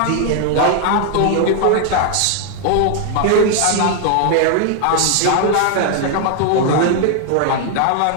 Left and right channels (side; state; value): both; different; correlation 0.00